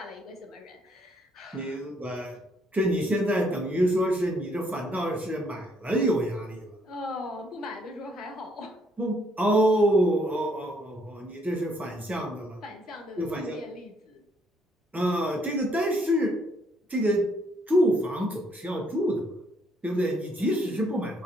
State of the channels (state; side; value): normal; both; correlation 0.69